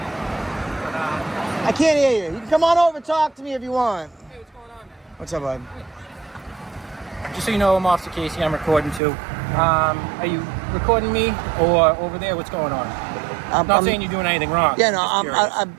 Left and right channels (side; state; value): left; drops out; at 9.0 s